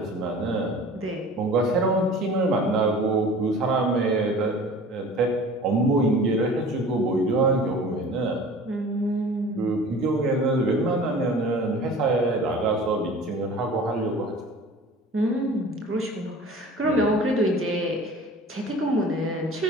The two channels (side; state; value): both; normal; correlation 0.42